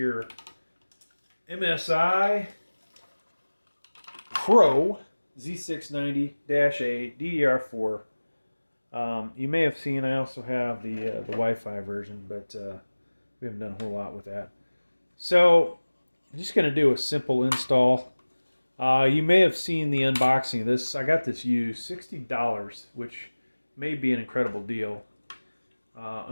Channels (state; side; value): inverted; both; correlation -1.00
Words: MSI Pro Z690-A D4. You may have seen I also have the Wi-Fi version, but we haven't done a whole lot with that. So I'm just going to do a simple install. You may have seen the unboxing of this. I got this used, $60, which may be an incredible deal.